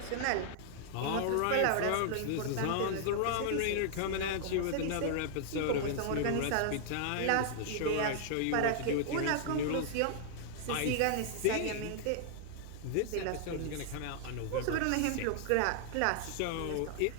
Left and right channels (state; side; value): different; both; correlation -0.01